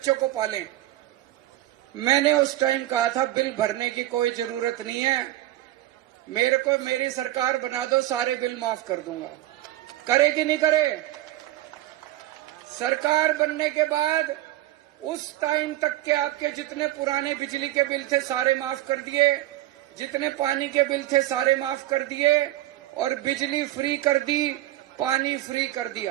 को पालें। मैंने उस टाइम कहा था बिल भरने की कोई जरूरत नहीं है, मेरे को मेरी सरकार बना दो, सारे बिल माफ कर दूंगा। करे कि नहीं करे? सरकार बनने के बाद उस टाइम तक के आपके जितने पुराने बिजली के बिल थे सारे माफ कर दिए, जितने पानी के बिल थे सारे माफ कर दिए, और बिजली फ्री कर दी, पानी फ्री कर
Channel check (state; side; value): quieter; left; 15.3 dB